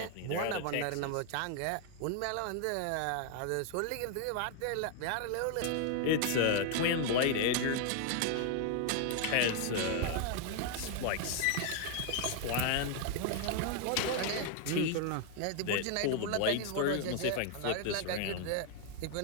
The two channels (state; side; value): different; both; correlation 0.00